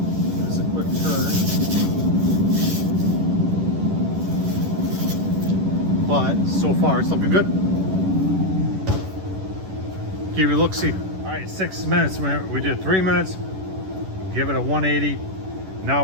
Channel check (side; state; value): left; late; 11 ms